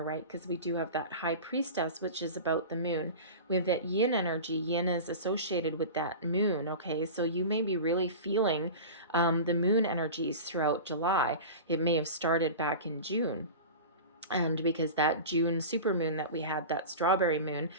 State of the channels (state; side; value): inverted; both; correlation -0.32